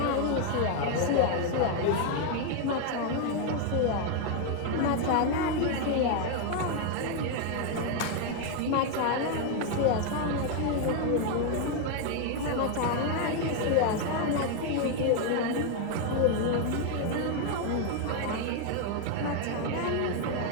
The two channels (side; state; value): both; different; correlation 0.01